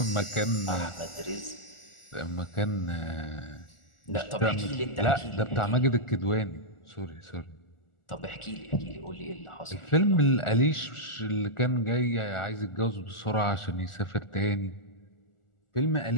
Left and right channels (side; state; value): right; late; 1.4 ms